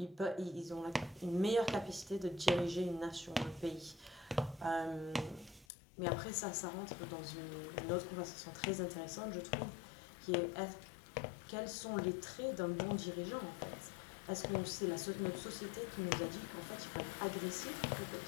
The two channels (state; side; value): drops out; right; at 5.7 s